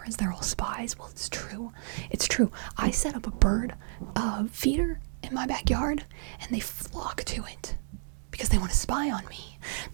they're all spies. Well, it's true. I set up a bird feeder in my backyard, and they flock to it because they want to spy on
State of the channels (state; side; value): silent; left; digital silence